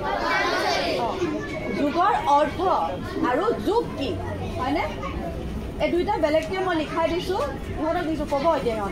যুগৰ অৰ্থ আৰু যুগ কি হয়নে এই দুইটা বেলেগকৈ মই লিখাই দিছোঁ ইহঁতক দিছোঁ ক'ব এতিয়া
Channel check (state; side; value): identical; both; correlation 1.00